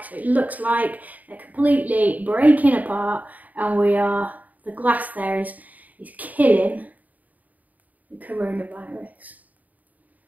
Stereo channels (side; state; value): left; late; 0.076 ms